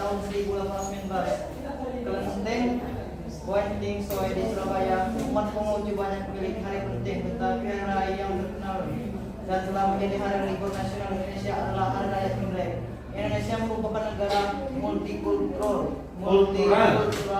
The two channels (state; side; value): identical; both; correlation 1.00